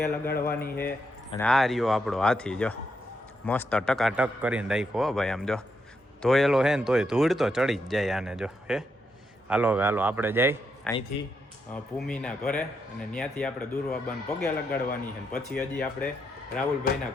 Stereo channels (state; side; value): normal; both; correlation 0.81